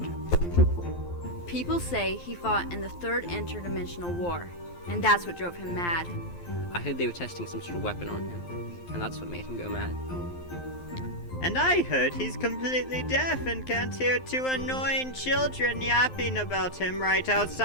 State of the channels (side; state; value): right; late; 12 ms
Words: People say he fought in the third interdimensional war, and that's what drove him mad. I heard they were testing some sort of weapon on him, and that's what made him go mad. And I heard he's completely deaf and can't hear two annoying children yapping about him right